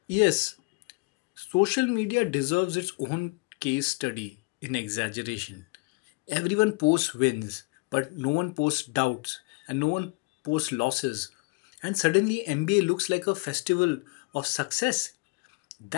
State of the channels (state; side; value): quieter; right; 28.5 dB